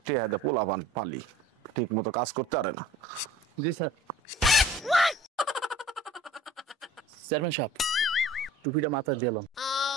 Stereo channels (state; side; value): normal; both; correlation 0.47